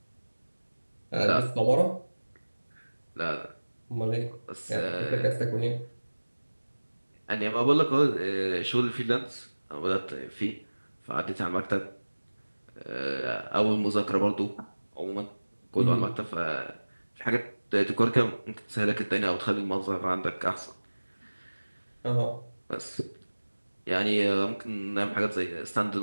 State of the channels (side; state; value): both; inverted; correlation -1.00